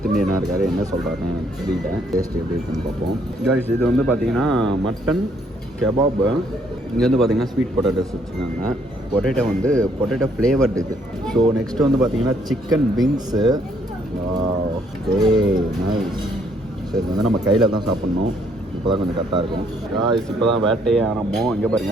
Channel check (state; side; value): normal; both; correlation 0.68